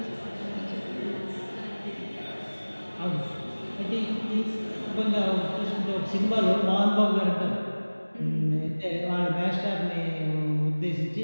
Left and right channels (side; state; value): both; inverted; correlation -1.00